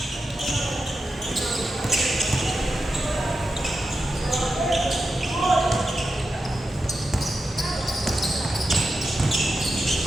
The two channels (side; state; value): both; normal; correlation 0.89